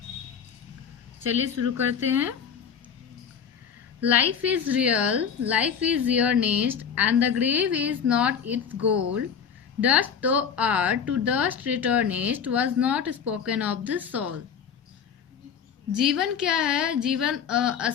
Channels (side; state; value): right; quieter; 7.3 dB